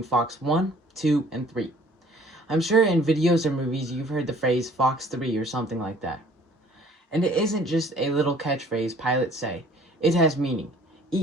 Fox 1, 2, and 3. I'm sure in videos or movies you've heard the phrase Fox 3 or something like that. And it isn't just a little catchphrase pilots say. It has meaning.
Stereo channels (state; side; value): normal; both; correlation 0.55